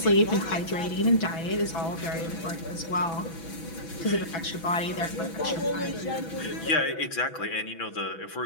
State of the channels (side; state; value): right; late; 6.0 ms